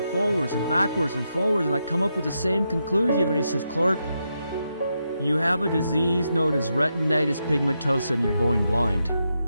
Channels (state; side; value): inverted; both; correlation -0.84